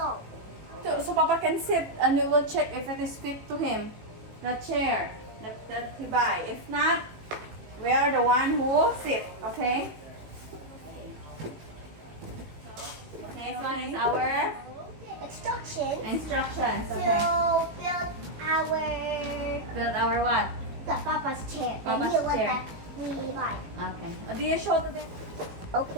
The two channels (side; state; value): left; late; 18 ms